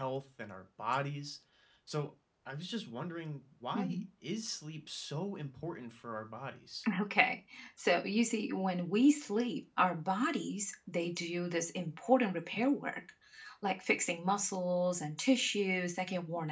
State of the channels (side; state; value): both; identical; correlation 1.00